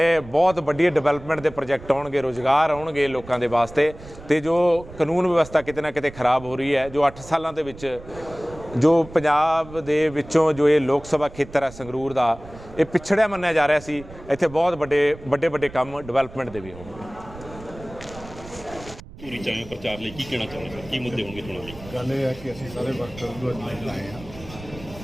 ਬਹੁਤ ਵੱਡੀ ਡਿਵੈਲਪਮੈਂਟ ਦੇ ਪ੍ਰੋਜੈਕਟ ਆਉਣਗੇ, ਰੁਜ਼ਗਾਰ ਆਉਣਗੇ ਲੋਕਾਂ ਦੇ ਵਾਸਤੇ। ਤੇ ਜੋ ਕਾਨੂੰਨ ਵਿਵਸਥਾ ਕਿਤੇ ਨਾ ਕਿਤੇ ਖਰਾਬ ਹੋ ਰਹੀ ਹੈ, ਜੋ 8 ਸਾਲਾਂ ਦੇ ਵਿੱਚ ਜੋ ਪੰਜਾਬ ਦੇ ਵਿੱਚੋਂ ਜੋ ਇਹ ਲੋਕ ਸਭਾ ਖੇਤਰ ਹੈ ਸੰਗਰੂਰ ਦਾ, ਇਹ ਪਿਛੜਿਆ ਮੰਨਿਆ ਜਾ ਰਿਹਾ ਸੀ, ਇੱਥੇ ਬਹੁਤ ਵੱਡੇ ਕੰਮ ਡਿਵੈਲਪਮੈਂਟ ਦੇ ਵੀ ਹੋਣਗੇ। ਪੂਰੀ ਚਾਹੇ ਪ੍ਰਚਾਰ ਲਈ ਕੀ ਕਹਿਣਾ ਚਾਹੁੰਦੇ ਹੋ, ਕੀ ਮੁੱਦੇ ਹੋਣਗੇ ਚੋਣਾਂ ਲਈ? ਗੱਲ ਇਹ ਹੈ ਕਿ ਅਸੀਂ ਸਾਰੇ ਵਰਕਰ ਨੂੰ ਅੱਜ ਲਾਏ ਹਾਂ।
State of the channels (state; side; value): noise; right; rumble, 17 dB below the sound